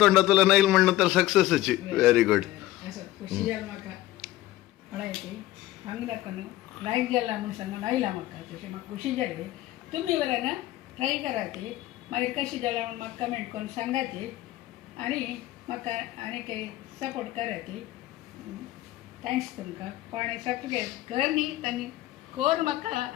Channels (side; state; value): right; quieter; 16.0 dB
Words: तोंडा तुला नाही म्हणणं तर सक्सेसची व्हेरी गुड असं खुशी जाल म्हाका पळयती हांगा दाखोवन लायक जाला म्हूण सांगून आयला म्हाका तशें म्हाका खुशी जाली तुमी बरें ना ट्राय करा ती मागीर कशी जाल्या म्हूण म्हाका कमेंट करून सांगा ती आनी म्हाका आनी काही सपोर्ट करा ती थँक्स तुमकां पण सब्सक्रायब कर न्ही तांणी कोर म्हाका